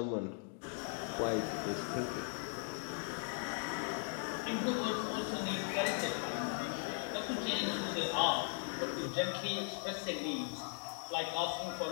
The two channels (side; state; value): right; silent; 52 dB below the other